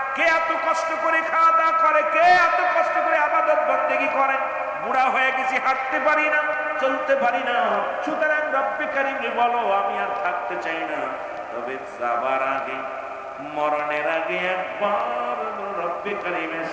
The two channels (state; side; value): identical; both; correlation 1.00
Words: কে এত কষ্ট করে খাওয়া দাওয়া করে? কে এত কষ্ট করে ইবাদত বন্দেগী করে? বুড়া হয়ে গেছি, হাঁটতে পারি না, চলতে পারি না। সুতরাং রব্বে কারীমরে বলো আমি আর থাকতে চাই না, তবে যাবার আগে, মরণের আগে একবার রব্বে কারীমের